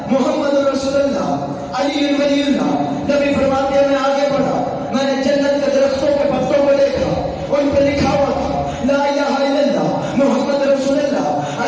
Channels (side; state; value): both; identical; correlation 1.00